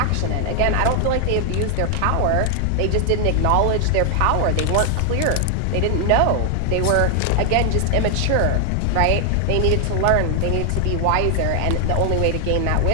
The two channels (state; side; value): different; both; correlation 0.00